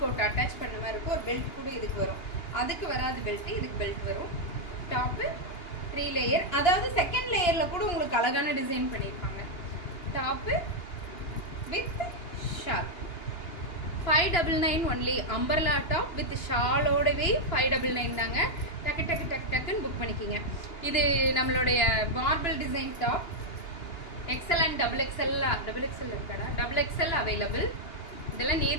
கோட் அட்டாச் பண்ண மாதிரி இருக்கும். ஒரு பெல்ட் கூட இதுக்கு வரும். அதுக்கு வராது பெல்ட், இதுக்கு பெல்ட் வரும். டாப் 3 லேயர், அதாவது செகண்ட் லேயர்ல கூட உங்களுக்கு அழகான டிசைன் பண்ணிருப்பாங்க. Top with shawl 599 only. அம்பர்லா டாப் வித் ஷாலோடவே 599 தாங்க. டக்கு டக்கு டக்கு டக்குன்னு புக் பண்ணிக்கிங்க. இது நம்மளுடைய marble design top. XL and double XL இருக்காடா, டபுள் எக்ஸ்எல் அவைலபிள். இதெல்லாம்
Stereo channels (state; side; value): late; right; 2.8 ms